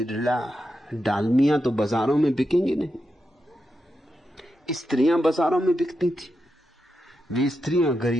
डालमिया तो बाजारों में बिकेंगे नहीं। स्त्रियां बाजारों में बिकती थी। वे स्त्रियां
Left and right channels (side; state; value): both; normal; correlation 0.87